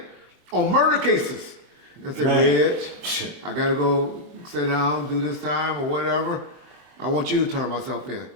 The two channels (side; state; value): left; late; 23 ms